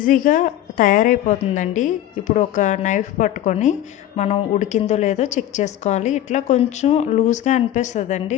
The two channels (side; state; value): right; quieter; 12.4 dB